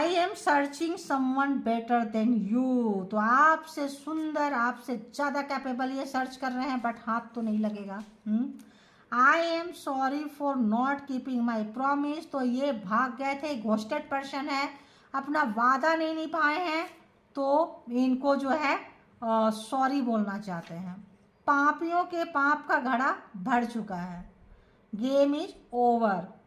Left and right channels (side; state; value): both; identical; correlation 1.00